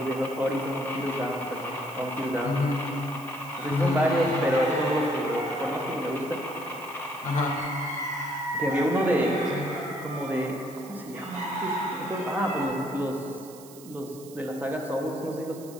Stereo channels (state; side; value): noise; right; hiss, 19 dB below the sound